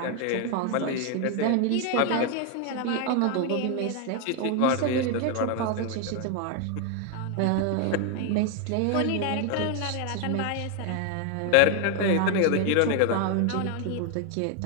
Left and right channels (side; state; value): both; different; correlation 0.01